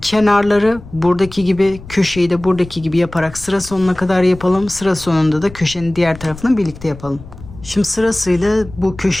Kenarları buradaki gibi, köşeyi de buradaki gibi yaparak sıra sonuna kadar yapalım. Sıra sonunda da köşenin diğer tarafını birlikte yapalım. Şimdi sırasıyla bu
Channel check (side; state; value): left; noise; rumble, 17 dB below the sound